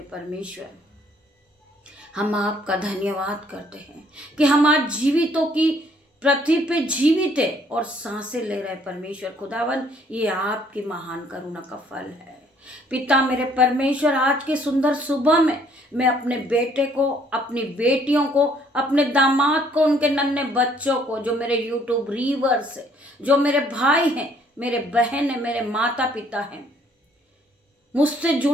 परमेश्वर। हम आपका धन्यवाद करते हैं कि हम आज जीवितों की पृथ्वी पे जीवित है और सांसें ले रहे परमेश्वर खुदावन। ये आपकी महान करुणा का फल है। पिता मेरे परमेश्वर, आज की सुंदर सुबह में मैं अपने बेटे को, अपनी बेटियों को, अपने दामाद को, उनके नन्हे बच्चों को, जो मेरे यूट्यूब रीवर्स है, जो मेरे भाई हैं, मेरे बहन है, मेरे माता पिता हैं, मुझसे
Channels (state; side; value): normal; both; correlation 0.63